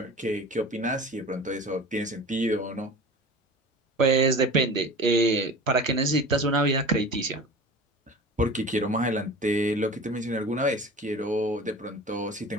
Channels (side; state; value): both; normal; correlation 0.38